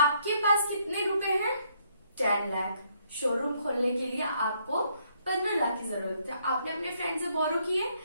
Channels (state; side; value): inverted; both; correlation -0.71